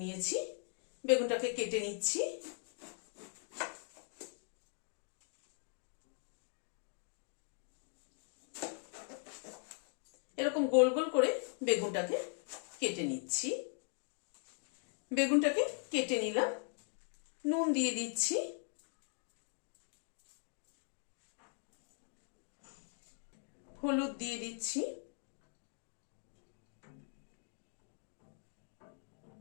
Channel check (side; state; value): right; silent; 51 dB below the other